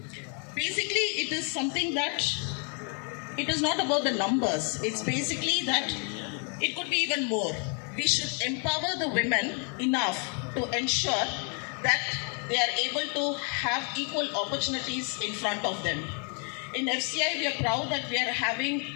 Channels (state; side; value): quieter; right; 39.7 dB